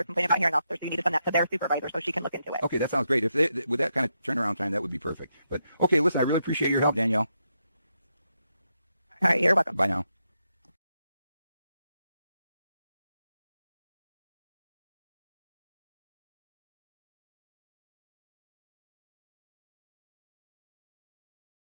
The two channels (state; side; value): inverted; both; correlation -0.83